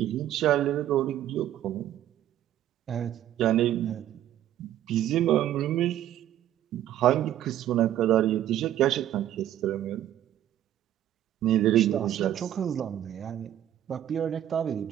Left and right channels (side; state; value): left; quieter; 11.9 dB